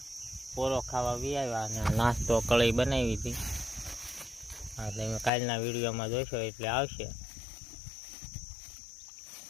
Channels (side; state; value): right; drops out; at 5.3 s